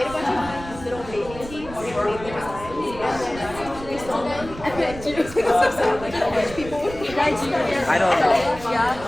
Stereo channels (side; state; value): right; noise; rumble, 14 dB below the sound